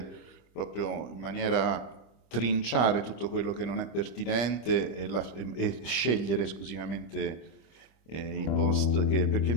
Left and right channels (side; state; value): right; late; 25 ms